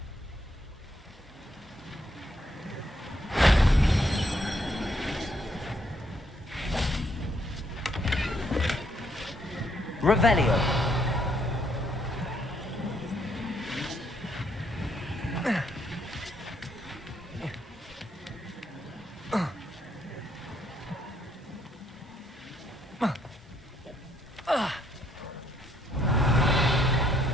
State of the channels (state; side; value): normal; both; correlation 0.71